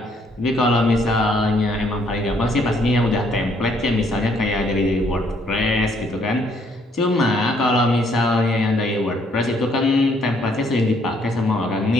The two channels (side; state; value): both; normal; correlation 0.67